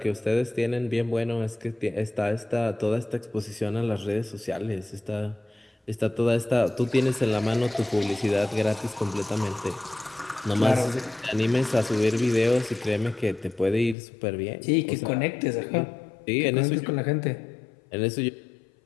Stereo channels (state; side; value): drops out; right; at 14.0 s